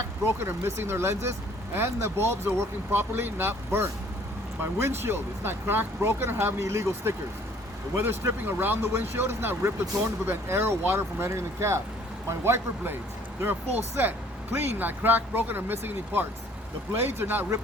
broken, or missing their lenses, and the bulbs are working properly, not burnt. My windshield is not cracked, broken, or have any illegal stickers. The weather stripping around the windshield is not ripped or torn to prevent air or water from entering the cab. My wiper blades, they're a full set, clean, not cracked, broken, or missing any parts. The blades are not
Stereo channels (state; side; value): normal; both; correlation 0.57